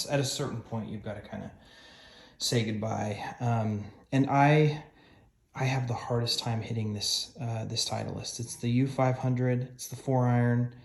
at a certain point you've got to kind of say goodbye. And I have the hardest time hitting this Titleist. It's the U500. It's the 4-iron.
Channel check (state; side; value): identical; both; correlation 1.00